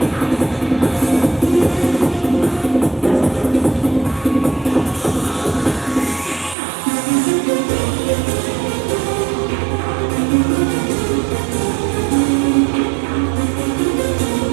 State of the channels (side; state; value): left; drops out; at 6.6 s